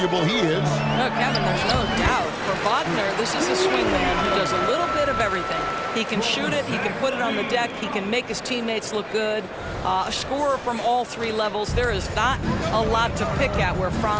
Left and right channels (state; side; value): identical; both; correlation 1.00